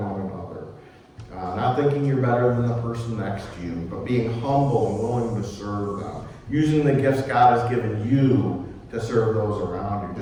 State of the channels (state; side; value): identical; both; correlation 1.00